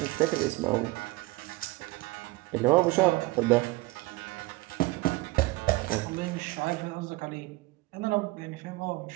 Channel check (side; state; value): left; quieter; 21.4 dB